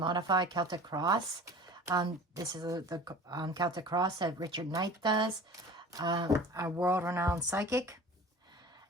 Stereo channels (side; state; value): both; normal; correlation 0.41